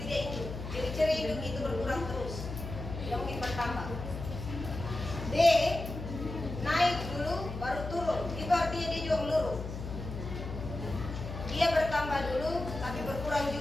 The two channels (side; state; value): left; noise; hum, 7 dB below the sound